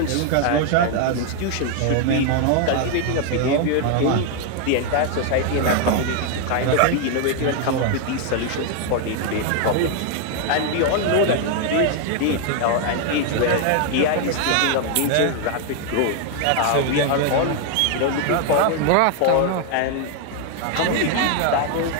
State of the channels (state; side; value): different; both; correlation 0.00